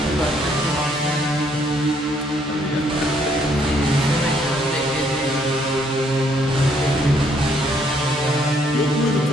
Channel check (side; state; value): both; normal; correlation 0.68